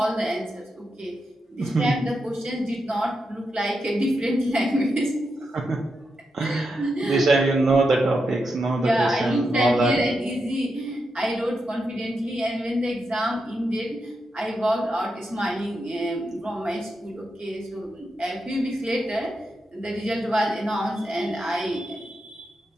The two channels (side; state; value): both; normal; correlation 0.86